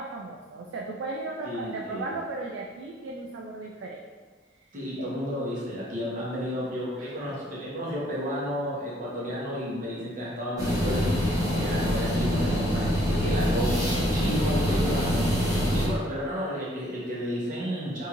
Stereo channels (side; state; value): both; normal; correlation 0.64